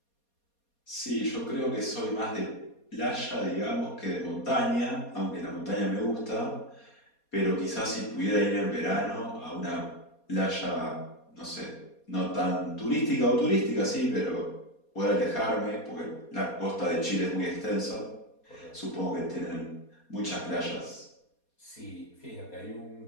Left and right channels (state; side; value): late; right; 4.2 ms